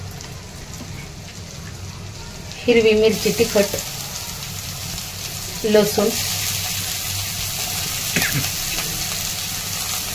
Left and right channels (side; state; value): both; identical; correlation 1.00